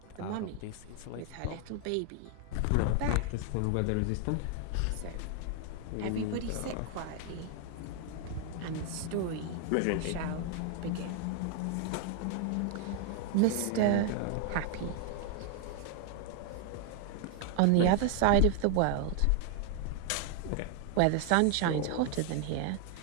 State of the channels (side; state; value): both; different; correlation 0.00